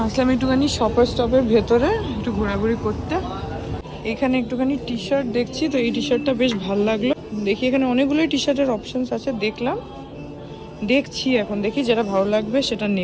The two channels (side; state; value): both; identical; correlation 1.00